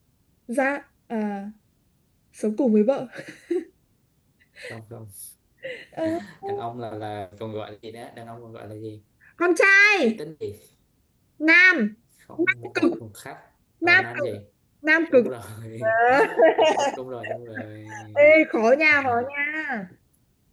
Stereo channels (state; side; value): identical; both; correlation 1.00